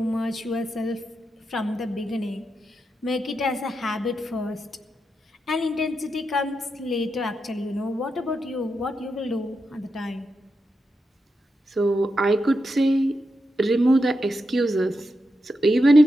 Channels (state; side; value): normal; both; correlation 0.86